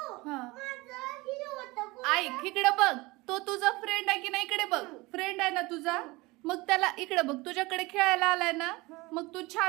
हा माझं हे होतं. ऐक इकडे बघ. तो तुझा फ्रेंड आहे की नाही. इकडे बघ फ्रेंड आहे ना तुझा. मग त्याला इकडे बघ तुझ्याकडे खेळायला आलाय ना. मग तू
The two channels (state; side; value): quieter; left; 22.5 dB